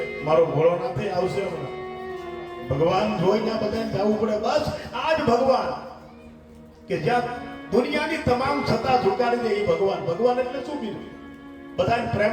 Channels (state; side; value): identical; both; correlation 1.00